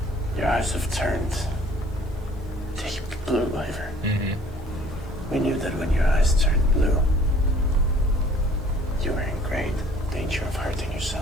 Your eyes have turned deep blue, Ivor. We knew that when your eyes turned blue. great danger of hurting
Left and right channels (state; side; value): normal; both; correlation 0.55